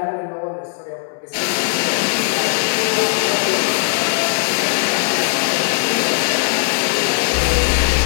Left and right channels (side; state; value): right; silent; digital silence